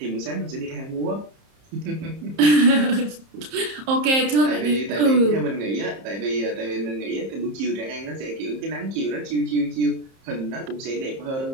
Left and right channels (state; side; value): late; left; 30 ms